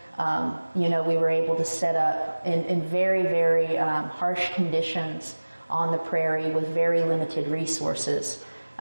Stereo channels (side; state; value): both; inverted; correlation -1.00